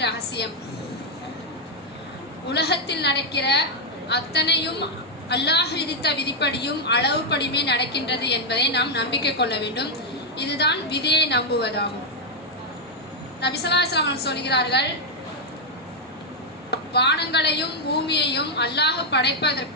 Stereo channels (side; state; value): both; normal; correlation -0.01